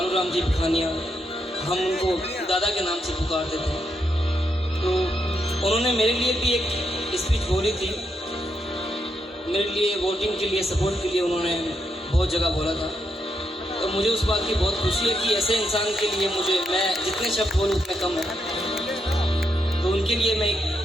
जी भिखानिया, हम उनको दादा के नाम से पुकारते थे, तो उन्होंने मेरे लिए भी एक स्पीच बोली थी। मेरे लिए वोटिंग के लिए, सपोर्ट के लिए उन्होंने बहुत जगह बोला था। तो मुझे उस बात की बहुत खुशी है कि ऐसे इंसान के लिए मैं जितने शब्द बोलूँ उतने कम है। तो उनके लिए मैं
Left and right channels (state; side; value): normal; both; correlation 0.80